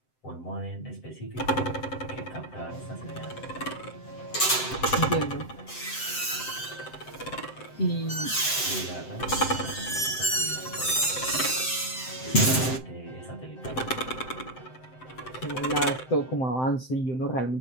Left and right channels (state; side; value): late; right; 7.8 ms